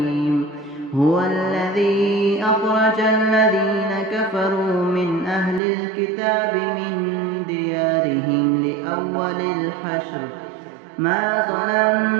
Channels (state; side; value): drops out; left; at 5.6 s